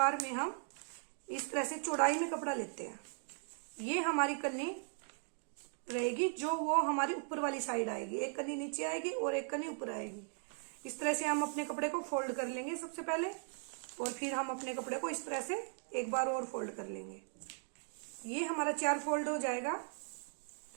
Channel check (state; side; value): silent; left; 52 dB below the other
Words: में हम इस तरह से चौड़ाई में कपड़ा लेते हैं। ये हमारी कन्नी रहेगी, जो वो हमारी ऊपर वाली साइड आएगी। एक कन्नी नीचे आएगी और एक कन्नी ऊपर आएगी। इस तरह से हम अपने कपड़े को फोल्ड कर लेंगे सबसे पहले, और फिर हम अपने कपड़े को इस तरह से एक बार और फोल्ड कर लेंगे। ये हमारा 4 फोल्ड हो जाएगा।